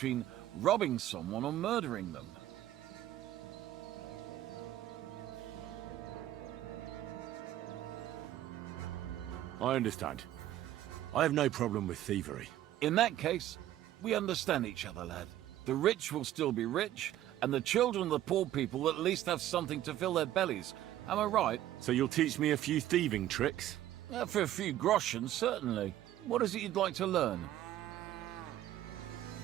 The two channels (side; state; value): left; quieter; 13.2 dB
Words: robbing someone or murdering them. I understand. I have no problem with thievery. In that case, we understand each other, lad. The rich will still be rich, and the children of the poor people at least have something to fill their bellies. Am I right? So you'll teach me a few thieving tricks? For a few groschen, certainly. What is it you'd like to learn?